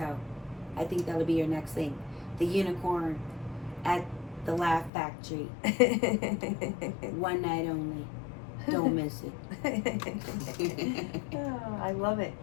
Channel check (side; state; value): right; drops out; at 4.9 s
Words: I think that'll be your next thing. The unicorn at the Laugh Factory. One night only. Don't miss it. Oh, I love it.